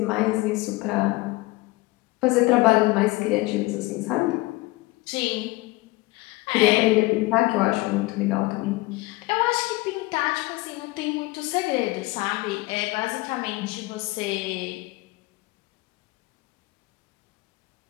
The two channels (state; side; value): quieter; right; 21.2 dB